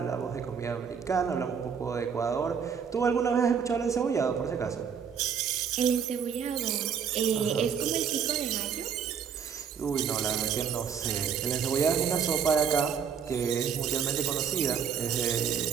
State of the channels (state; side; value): quieter; left; 7.3 dB